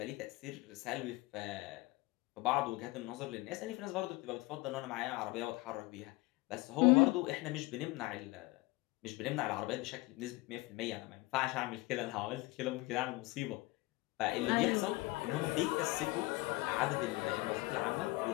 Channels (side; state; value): right; quieter; 21.6 dB